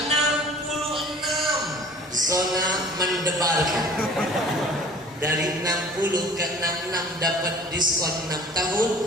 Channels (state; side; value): normal; both; correlation 0.47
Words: Zona mendebarkan. Dari 60 ke 66 dapat diskon 6